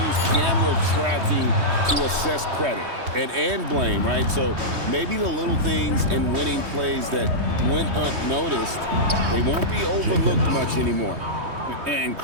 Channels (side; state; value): left; late; 3.2 ms